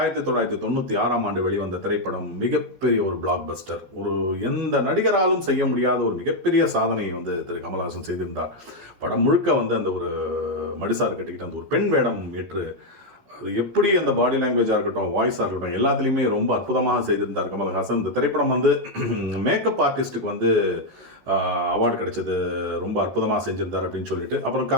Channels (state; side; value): late; left; 13 ms